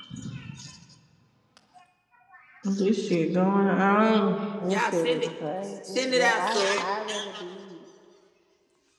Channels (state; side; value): identical; both; correlation 1.00